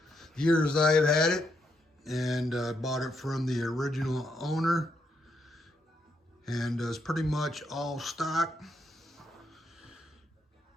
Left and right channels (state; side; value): normal; both; correlation 0.78